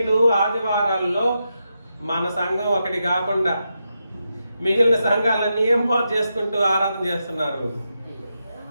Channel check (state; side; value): inverted; both; correlation -0.86